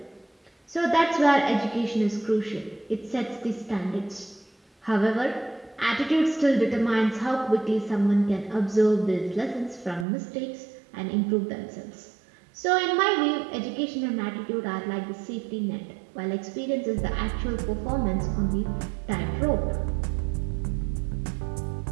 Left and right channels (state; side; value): drops out; left; at 10.1 s